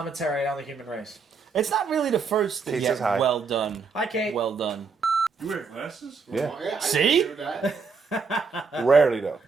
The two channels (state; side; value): quieter; left; 5.0 dB